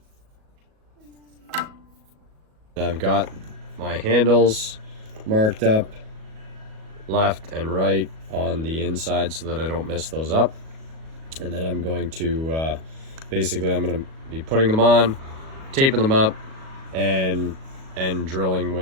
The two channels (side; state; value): left; late; 37 ms